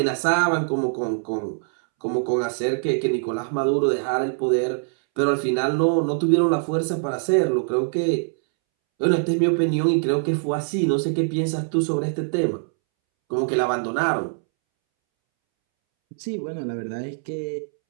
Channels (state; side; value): silent; left; 63 dB below the other